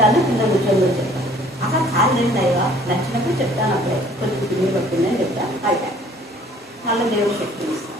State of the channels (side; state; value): both; normal; correlation 0.55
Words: కింద కూర్చొని చెప్తాను. అక్కడ కాలేదయ్యా, నచ్చినప్పుడు చెప్తాను. అప్పుడే కొంచెం కింద పట్టిందని చెప్తాను. అయితే వాళ్ళ దేవుడు శక్తి ఇస్తాను.